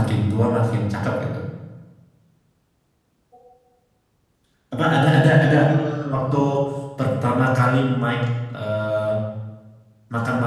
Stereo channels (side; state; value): both; identical; correlation 1.00